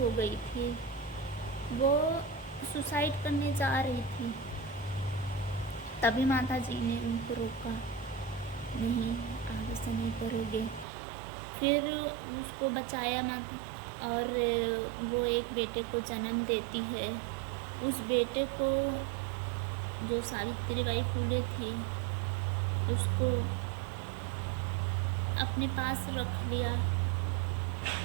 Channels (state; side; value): drops out; left; at 10.9 s